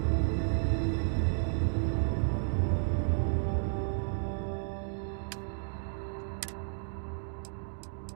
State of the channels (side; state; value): left; silent; digital silence